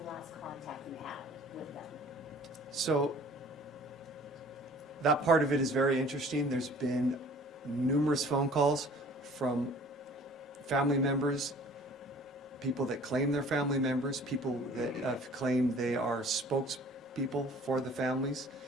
last contact you had with them? So that part of it is very interesting. There's been numerous phone calls from family members, people that claim they're family members, people that have claimed they are spokespeople for the families.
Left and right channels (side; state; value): both; normal; correlation 0.50